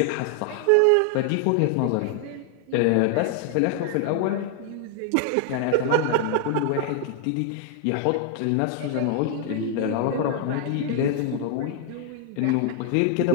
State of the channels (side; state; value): both; different; correlation 0.00